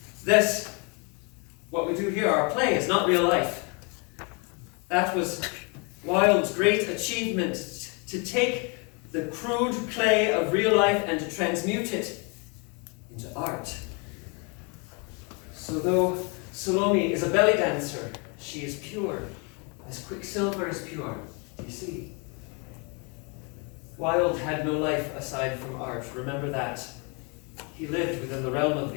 This, what we do here, our play, is not real life. That was Wilde's great achievement, to take the crude clay of real life and to transmute it into art. So though Salome is a belly dancer, she is pure, as quicksilver is pure, you see. Wilde had no life aside from art, remember that. He lived within the realm of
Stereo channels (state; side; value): quieter; right; 33.3 dB